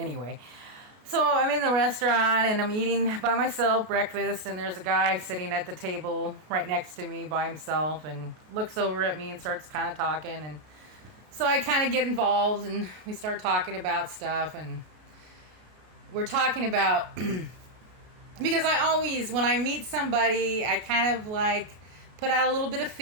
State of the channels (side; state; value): left; late; 33 ms